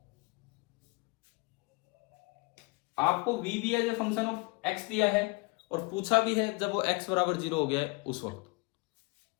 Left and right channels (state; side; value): quieter; right; 26.4 dB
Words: आपको v भी as a function of x दिया है और पूछा भी है जब वो x बराबर 0 हो गया है उस वक्त